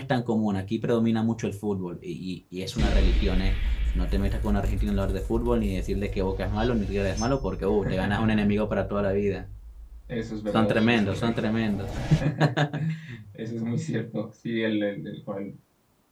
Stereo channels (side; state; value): both; identical; correlation 1.00